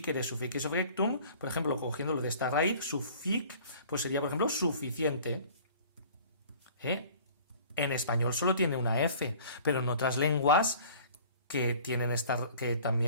sufficifectum, por ejemplo, cogiéndolo de esta raíz, suffic, pues sería, por ejemplo, suficiente. En español solo tiene una F, pero en otras lenguas que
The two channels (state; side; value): inverted; both; correlation -0.48